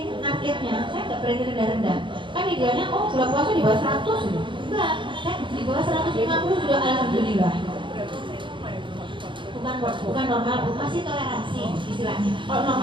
targetnya, saya nggak berani rendah-rendah. Kan idealnya, gula puasa di bawah 100, enggak, saya di bawah 150 sudah alhamdulillah. Bukan normal, masih toleransi istilahnya. Kalau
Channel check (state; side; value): late; left; 0.24 ms